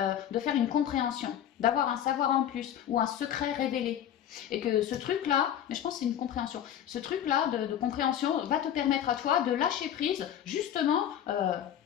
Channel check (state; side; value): quieter; right; 10.2 dB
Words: de faire une compréhension, d'avoir un savoir en plus ou un secret révélé. Et que ce truc-là, mais je pense que c'est une compréhension, ce truc-là de compréhension va te permettre à toi de lâcher prise justement